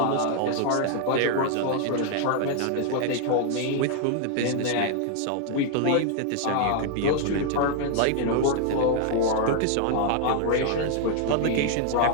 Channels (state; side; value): different; both; correlation 0.00